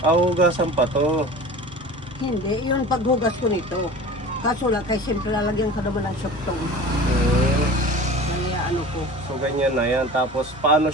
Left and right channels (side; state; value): both; normal; correlation 0.38